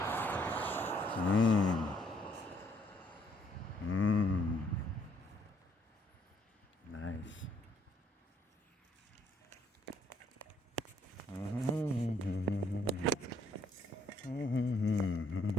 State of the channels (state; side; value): normal; both; correlation 0.68